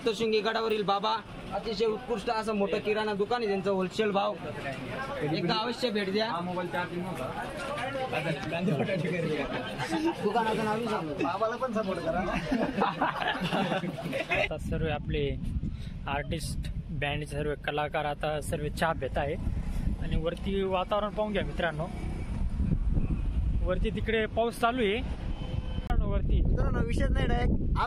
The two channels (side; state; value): both; identical; correlation 1.00